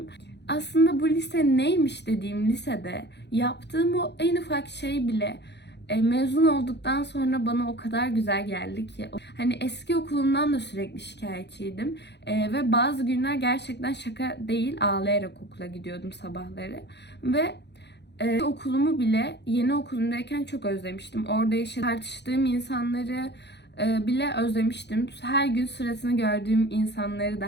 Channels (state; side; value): late; right; 0.50 ms